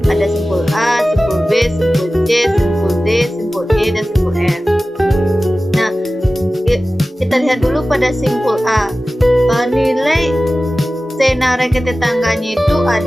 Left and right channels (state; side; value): normal; both; correlation 0.96